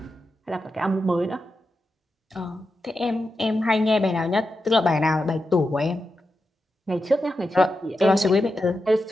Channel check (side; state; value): both; normal; correlation 0.89